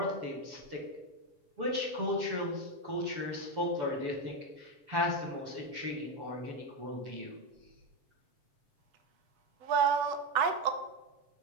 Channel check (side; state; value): left; late; 7.0 ms